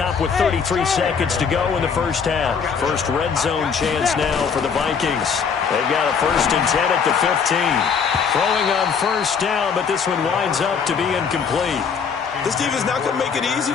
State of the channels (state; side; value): quieter; right; 6.3 dB